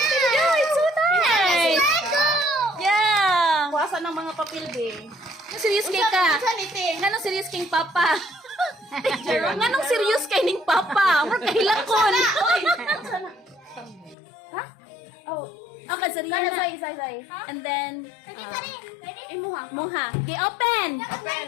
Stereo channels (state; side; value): drops out; right; at 14.2 s